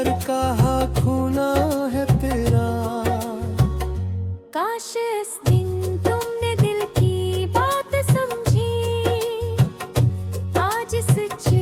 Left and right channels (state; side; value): identical; both; correlation 1.00